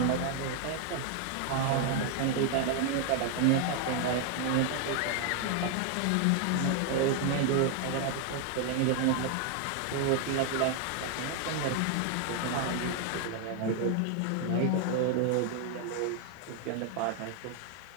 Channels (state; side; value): different; both; correlation 0.00